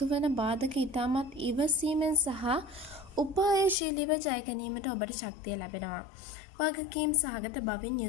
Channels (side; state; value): right; drops out; at 3.8 s